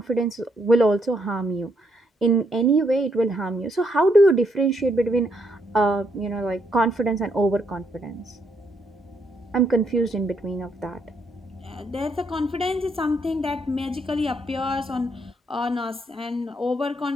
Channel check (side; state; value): both; normal; correlation 0.75